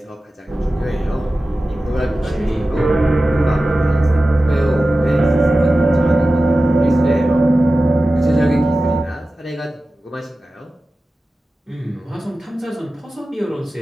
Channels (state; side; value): normal; both; correlation 0.95